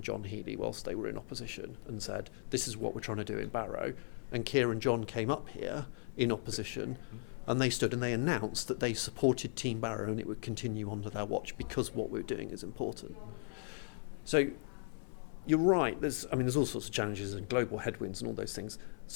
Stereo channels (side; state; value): right; silent; 53 dB below the other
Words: John Healey whilst they were in opposition and said, this is what we're trying to do in Barrow. And Keir and John came up here in opposition, and they stood and they announced that they supported Team Barrow and it would continue under their watch because what we're doing is important. So you're right, there's all sorts of challenges and global headwinds and all those things.